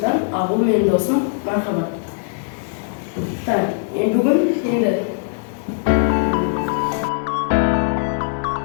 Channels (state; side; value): silent; right; digital silence